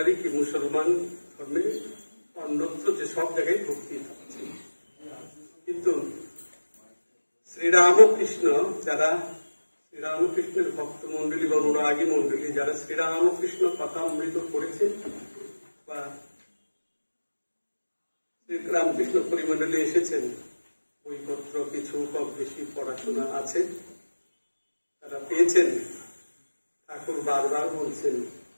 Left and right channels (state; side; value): inverted; both; correlation -1.00